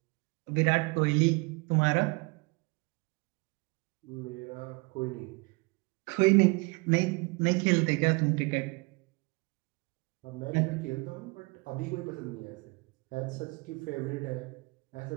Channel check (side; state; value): left; quieter; 28.0 dB